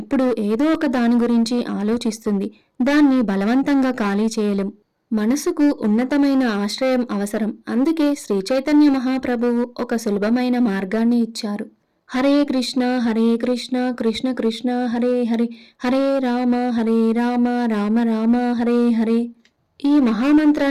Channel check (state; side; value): identical; both; correlation 1.00